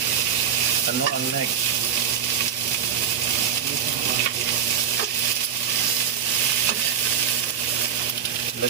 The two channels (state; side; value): quieter; left; 8.2 dB